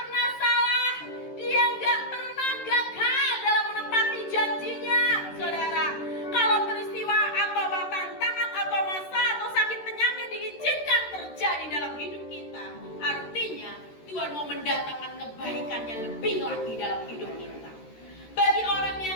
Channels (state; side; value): late; right; 13 ms